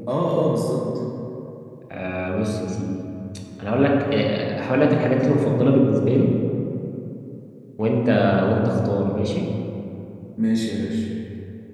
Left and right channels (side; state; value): both; identical; correlation 1.00